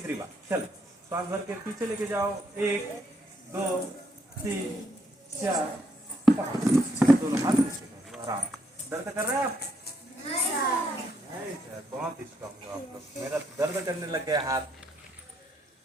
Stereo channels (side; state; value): both; normal; correlation 0.74